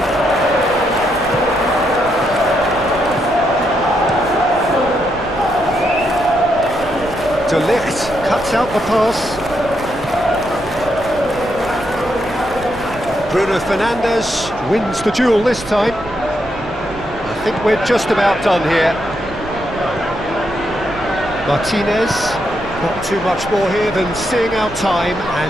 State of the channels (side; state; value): right; noise; rumble, 16 dB below the sound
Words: De Ligt cuts out the pass. Bruno Fernandes wins the duel this time. I think we're just about done here. Martinez, not too much more here than seeing out time,